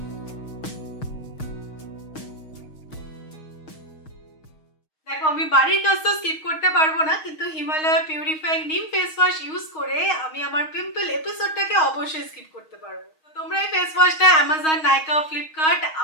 আমি বাড়ির কাজ তো স্কিপ করতে পারবো না, কিন্তু Himalaya purifying neem face wash use করে আমি আমার পিম্পল এপিসোডটাকে অবশ্যই স্কিপ করতে পারবো। তো তোমরা এই ফেস ওয়াশটা অ্যামাজন, নাইকা, ফ্লিপকার্ট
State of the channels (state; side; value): late; right; 6.4 ms